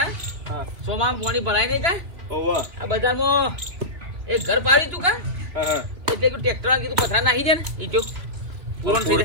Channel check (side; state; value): left; late; 2.8 ms